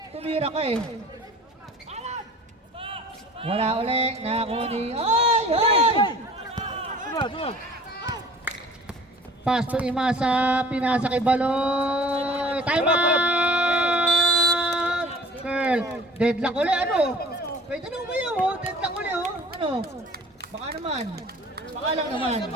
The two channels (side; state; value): both; normal; correlation 0.47